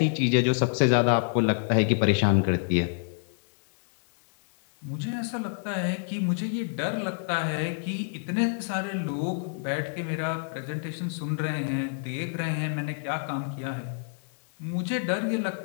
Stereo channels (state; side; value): silent; right; digital silence